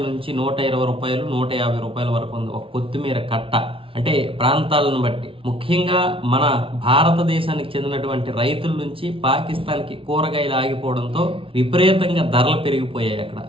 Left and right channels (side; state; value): left; late; 0.26 ms